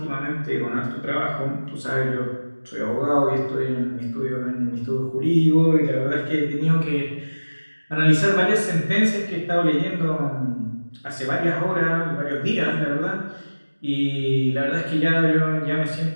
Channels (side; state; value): both; inverted; correlation -1.00